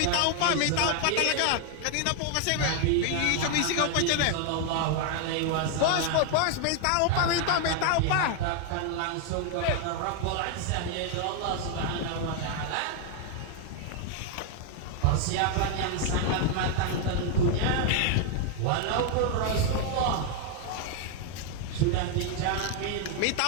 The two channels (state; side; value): different; both; correlation 0.00